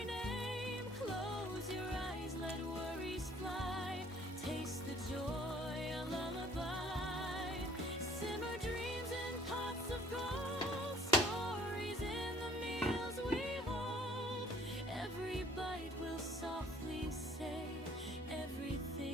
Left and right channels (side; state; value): both; normal; correlation 0.57